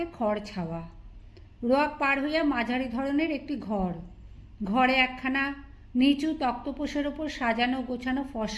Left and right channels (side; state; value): both; identical; correlation 1.00